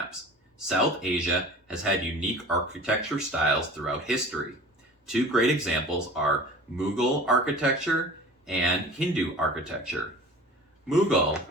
South Asia has had unique architecture styles throughout history. Two great examples are Mughal architecture and Hindu architecture. Mughal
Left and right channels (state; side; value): normal; both; correlation 0.41